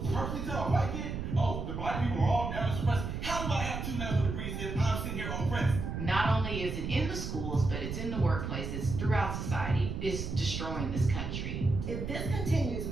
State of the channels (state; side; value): noise; right; rumble, 4 dB below the sound